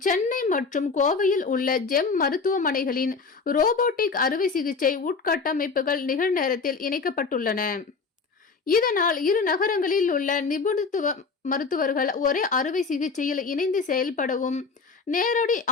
சென்னை மற்றும் கோவையில் உள்ள ஜெம் மருத்துவமனைகளின் ரோபோட்டிக் அறுவை சிகிச்சை உட்கட்டமைப்புகள் நிகழ்நேரத்தில் இணைக்கப்பட்டுள்ளன. இதனால் இரு நகரங்களில் உள்ள நிபுணத்துவ மருத்துவர்கள் ஒரே அறுவை சிகிச்சையில் இணைந்து செயல்படவும், நேரடி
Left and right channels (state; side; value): quieter; right; 4.7 dB